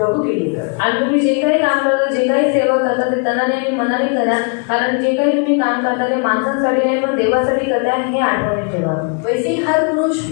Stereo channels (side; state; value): right; quieter; 37.2 dB